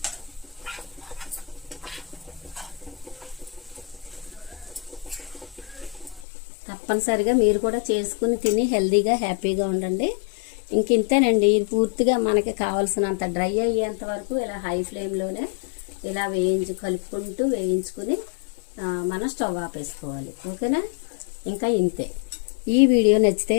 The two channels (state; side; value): drops out; right; at 6.2 s